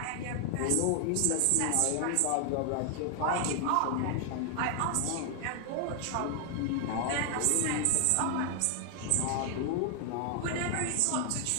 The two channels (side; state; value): both; different; correlation 0.00